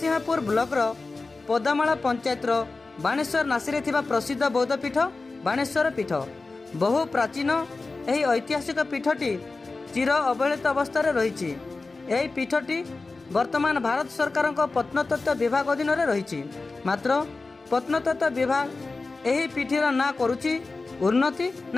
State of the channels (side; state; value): right; quieter; 3.7 dB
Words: ब्लॉकर पदामाला पंचायतर बाणेश्वर नासी थिबा प्रसिद्ध बौद्ध पीठ बाणेश्वर पीठ। बहु प्राचीन यही ऐतिहासिक पीठटी चिर अवहेलित अवस्था रही। यही पीठटी वर्तमान भारत सरकार प्रत्नतत्व विभाग अधीन रही। मात्र प्रत्नतत्व विभाग यही पीठर ना करुछि उन्नति